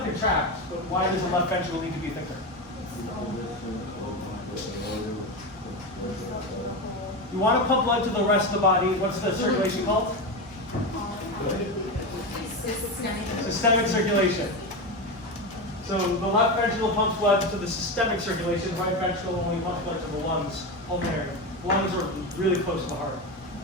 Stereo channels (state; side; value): normal; both; correlation 0.17